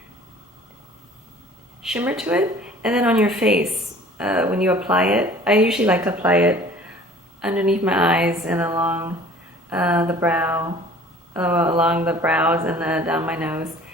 shimmer to it. And then on your face, when you apply it, I usually like to apply it underneath my eyes and along the brow, along the brows and down my nose.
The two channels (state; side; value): normal; both; correlation 0.49